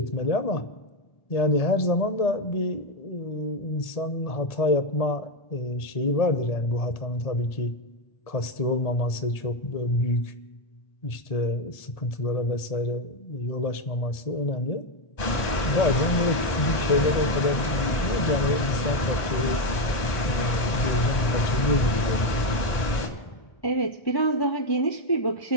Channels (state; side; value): late; right; 1.8 ms